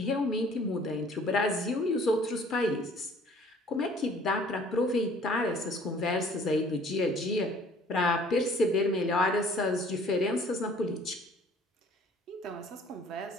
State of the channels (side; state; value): both; normal; correlation 0.54